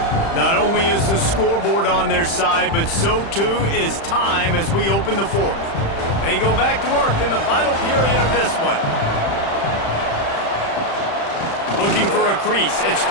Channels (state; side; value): late; right; 35 ms